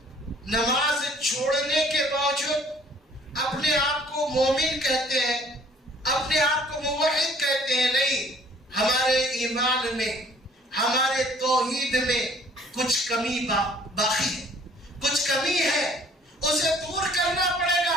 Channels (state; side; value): normal; both; correlation 0.56